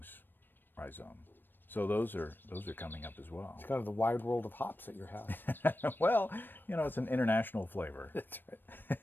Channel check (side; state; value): right; late; 0.094 ms